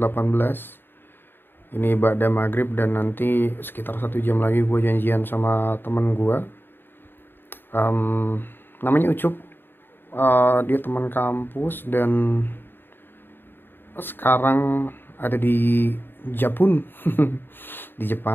Ini ba'da maghrib dan nanti sekitar 1 jam lagi gue janjian sama temen gue. Namanya Ucup. Dia teman kampus dan sekarang ada di Japun, di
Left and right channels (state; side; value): late; right; 0.098 ms